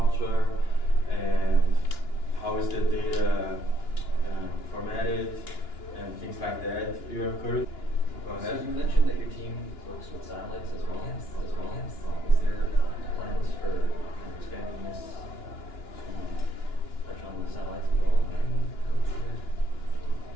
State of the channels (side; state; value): right; late; 2.9 ms